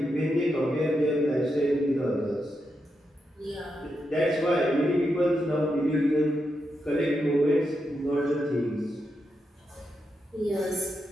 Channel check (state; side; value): normal; both; correlation 0.85